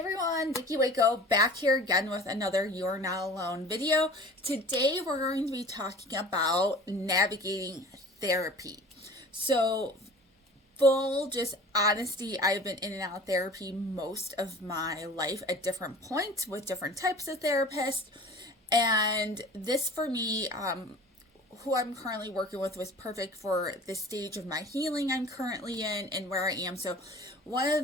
Vicky Waco back here again with another You're Not Alone video. Today we're going to be talking about navigating therapy. So, full just honesty, I've been in and out of therapy most of my life at different points with different types of therapists. And this for me, who I'm currently working with was perfect for the stage of my healing I'm currently in and where I am. So, one of the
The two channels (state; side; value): normal; both; correlation 0.43